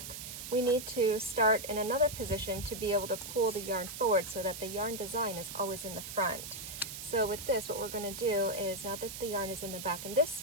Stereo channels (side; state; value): right; noise; hiss, 9 dB below the sound